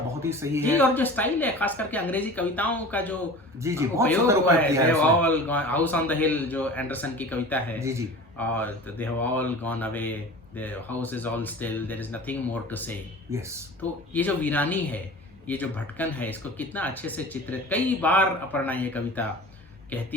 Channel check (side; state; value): both; normal; correlation 0.38